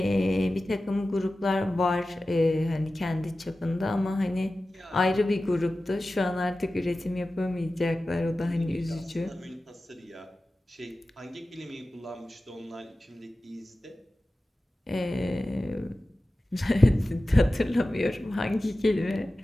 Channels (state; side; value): normal; both; correlation 0.95